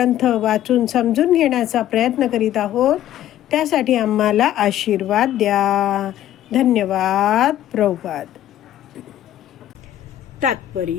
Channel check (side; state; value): right; quieter; 12.3 dB